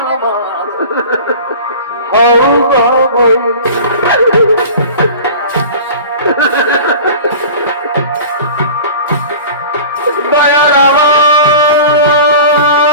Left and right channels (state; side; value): inverted; both; correlation -0.38